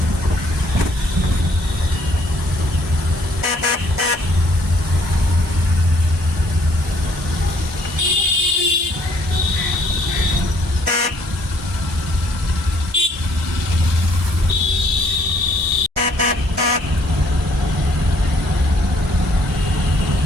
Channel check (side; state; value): both; normal; correlation 0.64